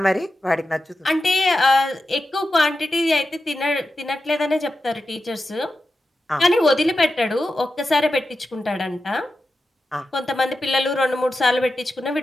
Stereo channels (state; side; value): normal; both; correlation 0.91